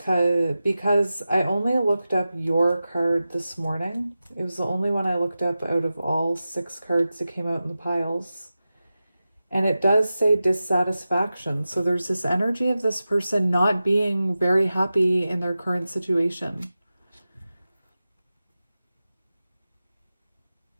Because I only looked up your card this morning. It was the only one I looked up out of all 6 cards that came out in the piles. And it does say dissatisfaction. So there's this energy of this person not being very happy in their current situation.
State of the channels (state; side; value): inverted; both; correlation -0.94